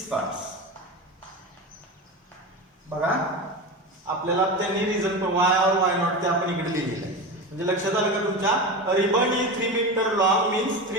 parts. बघा आपल्याला त्यांनी रिझन वाय और वाय नॉट ते आपण इकडे लिहिलेलं आहे. म्हणजे लक्षात आलं का तुमच्या ribbon is 3 metre long means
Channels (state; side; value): normal; both; correlation 0.24